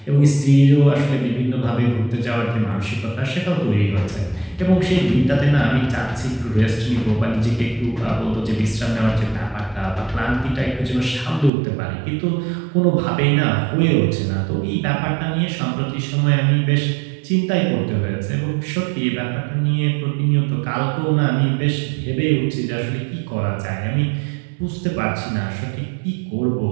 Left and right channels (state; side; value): drops out; left; at 11.5 s